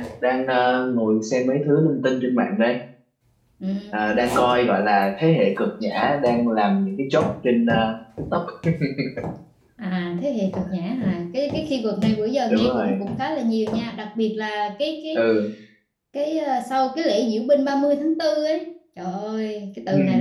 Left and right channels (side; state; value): both; identical; correlation 1.00